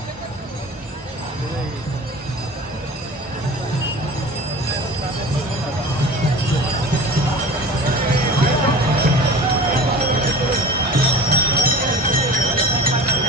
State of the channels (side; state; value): both; normal; correlation 0.37